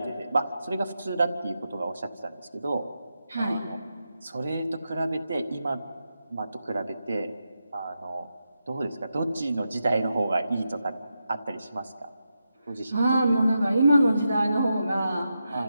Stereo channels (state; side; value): inverted; both; correlation -0.88